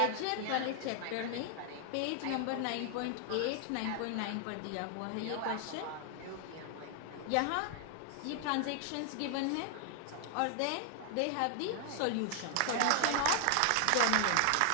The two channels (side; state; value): both; different; correlation 0.00